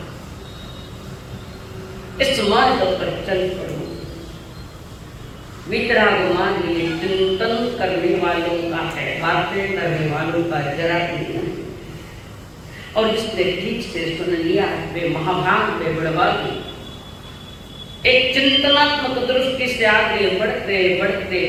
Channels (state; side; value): identical; both; correlation 1.00